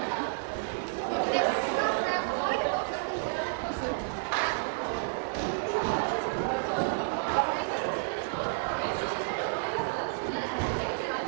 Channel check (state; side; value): silent; left; digital silence